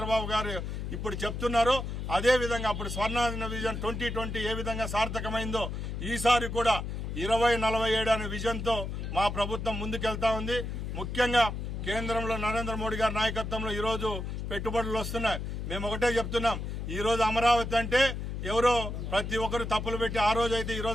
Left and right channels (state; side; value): noise; left; hum, 5 dB below the sound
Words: గారు ఇప్పుడు చెప్తున్నారో అదే విధంగా అప్పుడు స్వర్ణ విజన్ 2020 ఏ విధంగా సార్థకమైందో ఈసారి కూడా 2047 అనే విజన్ తో మా ప్రభుత్వం ముందుకెళ్తా ఉంది. ముఖ్యంగా కేంద్రంలో నరేంద్ర మోడీ గారి నాయకత్వంలో ఈ రోజు పెట్టుబడులు వస్తున్నాయి. మేము ఒకటే చెప్తున్నాం, ఈ రోజు అమరావతి అంటే ఎవరో ప్రతి ఒక్కరు తప్పులు పెట్టి ఆ రోజు అయితే ఈ